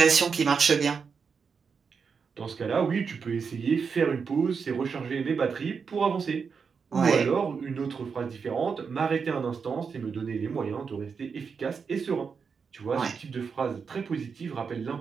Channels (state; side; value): quieter; left; 5.8 dB